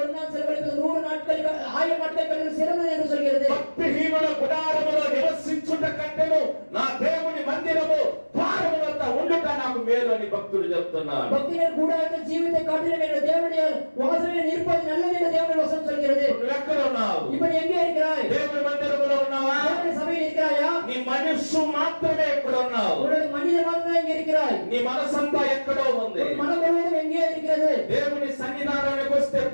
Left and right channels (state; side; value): inverted; both; correlation -1.00